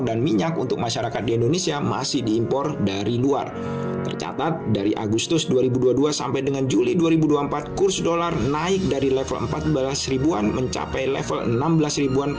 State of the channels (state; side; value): identical; both; correlation 1.00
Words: dan minyak untuk masyarakat di Indonesia masih diimpor dari luar. Tercatat dari Agustus 2022 sampai dengan Juli 2024, kurs dolar naik dari level 14 ribuan mencapai level 16 ribuan